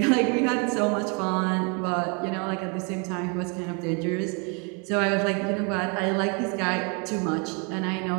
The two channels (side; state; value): left; quieter; 34.4 dB